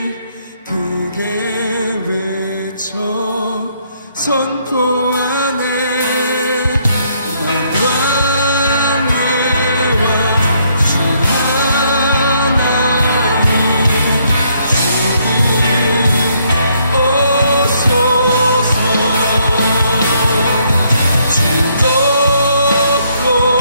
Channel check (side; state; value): both; inverted; correlation -0.70